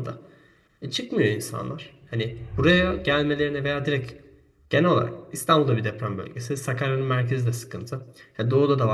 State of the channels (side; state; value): both; identical; correlation 1.00